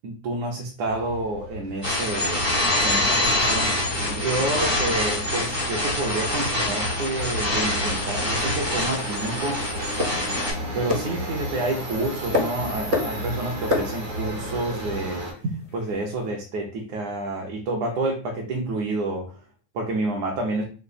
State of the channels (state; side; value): late; left; 9.7 ms